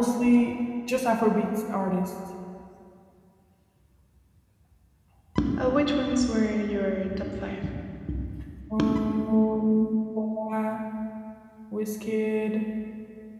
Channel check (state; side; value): identical; both; correlation 1.00